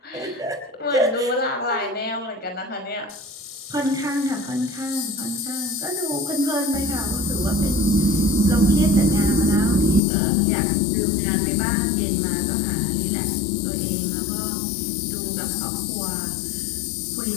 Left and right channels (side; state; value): right; drops out; at 10.0 s